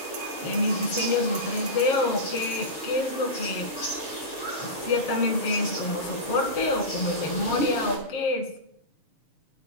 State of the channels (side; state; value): right; late; 6.7 ms